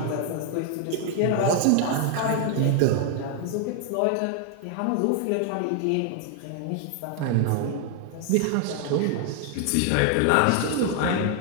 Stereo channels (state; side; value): different; both; correlation 0.00